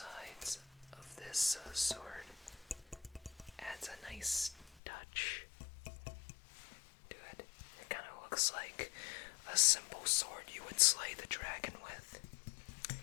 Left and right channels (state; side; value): drops out; right; at 4.8 s